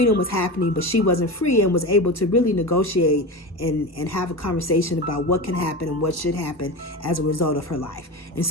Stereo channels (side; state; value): both; normal; correlation 0.24